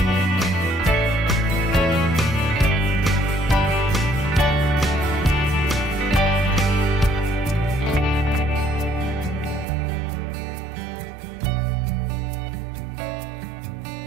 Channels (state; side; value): drops out; left; at 9.7 s